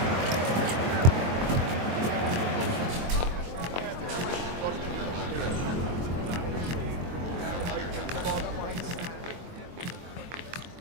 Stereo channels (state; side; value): late; left; 23 ms